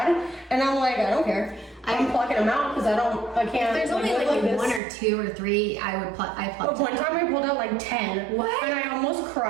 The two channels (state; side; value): drops out; left; at 4.8 s